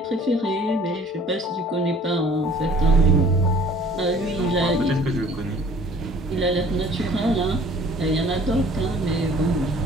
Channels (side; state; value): both; normal; correlation 0.52